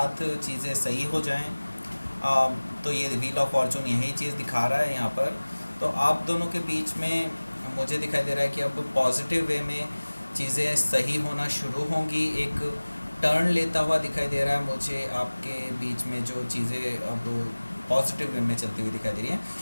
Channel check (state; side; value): inverted; both; correlation -1.00